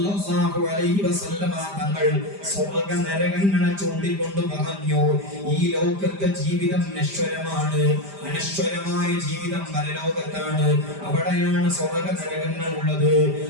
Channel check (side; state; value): left; late; 5.0 ms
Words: അലൈഹി വസല്ലം തങ്ങൾ സ്വർഗ്ഗ നരകങ്ങളെ ചൂണ്ടിക്കൊണ്ട് പറഞ്ഞു, ഈ ലോകത്തെ ജീവിതം നശ്വരമാണ്, അനശ്വരമായ ജീവിതം പരലോകത്താണ്. അവിടെയാണ് സ്വർഗ്ഗ നരകങ്ങൾ ഉള്ളത്.